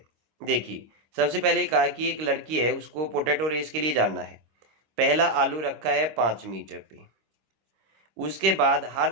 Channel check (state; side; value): late; left; 26 ms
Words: देखिए, सबसे पहले कहा कि एक लड़की है, उसको पोटैटो रेस के लिए जाना है, पहला आलू रखा है 5 मीटर पे, उसके बाद हर